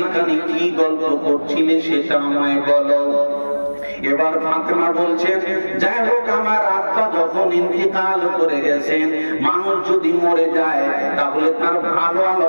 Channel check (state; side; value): inverted; both; correlation -1.00